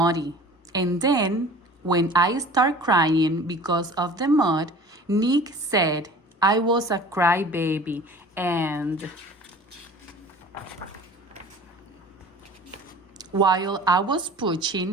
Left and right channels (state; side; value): normal; both; correlation 0.43